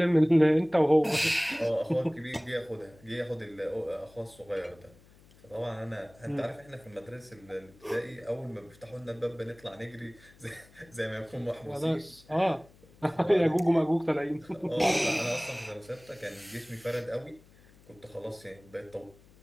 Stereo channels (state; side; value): noise; left; hum, 26 dB below the sound